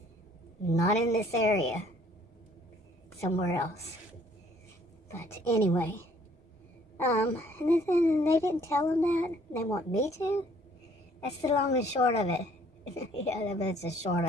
Not in this area. Somewhere else. But anyway. And then they didn't tell them that. They want me to. That's the long and short of it. Yeah, that's the short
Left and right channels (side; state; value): both; normal; correlation 0.60